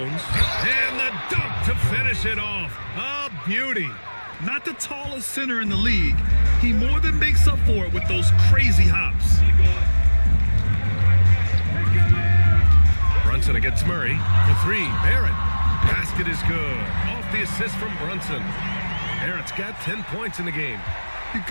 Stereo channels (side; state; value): both; inverted; correlation -1.00